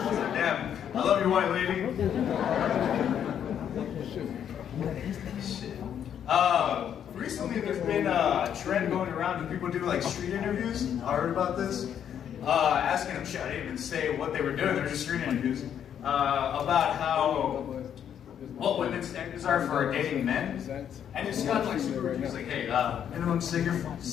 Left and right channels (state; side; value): quieter; right; 9.1 dB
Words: Damn, I love you, white lady. Shit. Recently there's been a trend going around when people do street interviews. I heard about this. Asking them shit. I didn't even say what they were doing. They're just street interviews about what women's standards are for dating men. And it's got super. It's like, hey, minimum